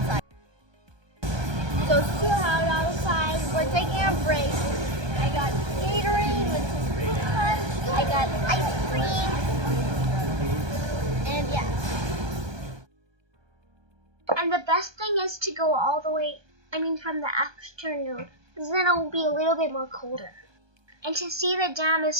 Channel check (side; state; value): left; late; 1.2 ms